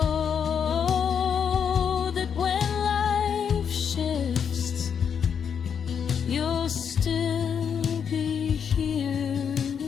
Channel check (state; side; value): quieter; right; 7.4 dB